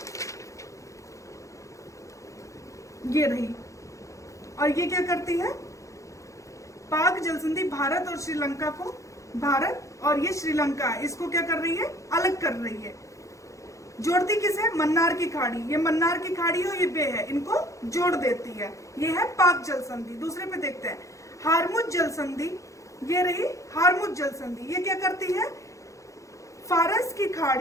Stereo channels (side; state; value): right; late; 0.15 ms